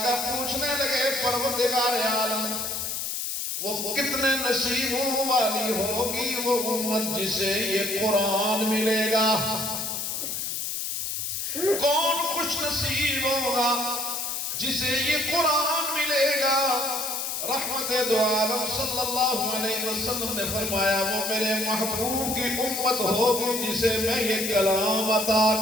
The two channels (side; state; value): left; noise; hiss, 3 dB below the sound